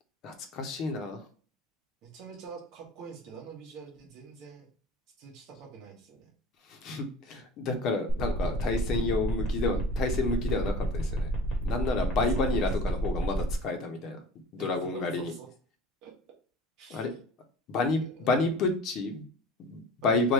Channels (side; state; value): both; normal; correlation 0.41